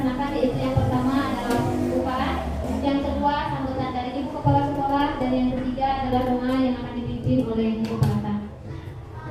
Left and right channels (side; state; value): both; identical; correlation 1.00